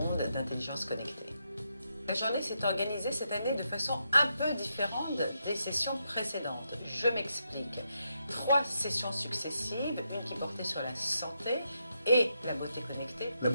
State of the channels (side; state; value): both; inverted; correlation -0.82